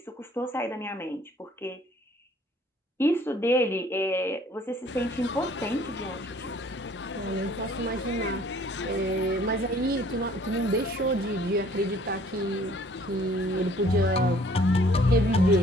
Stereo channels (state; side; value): normal; both; correlation 0.57